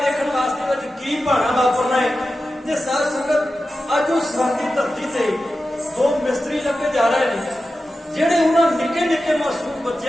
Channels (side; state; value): both; normal; correlation 0.92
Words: ਵਾਸਤੇ ਵਿੱਚ ਕੀ ਭਾਣਾ ਵਾਪਰਨਾ ਹੈ। ਤੇ ਸਾਧ ਸੰਗਤ ਅੱਜ ਉਹ ਸਰਹੰਦ ਦੀ ਧਰਤੀ ਤੇ ਦੋ ਮਿਸਤਰੀ ਲੱਗੇ ਜਾ ਰਹੇ ਨੇ, ਜਿਹੜੇ ਉਹਨਾਂ ਨਿੱਕੇ ਨਿੱਕੇ ਮਾਸੂਮ